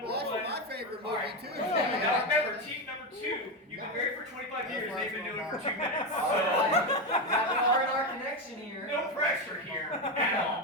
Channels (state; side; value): normal; both; correlation 0.12